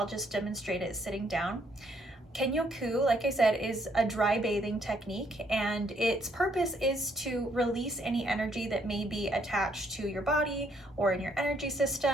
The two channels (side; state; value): both; normal; correlation 0.70